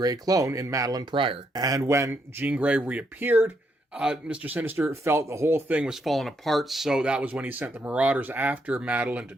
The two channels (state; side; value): normal; both; correlation 0.77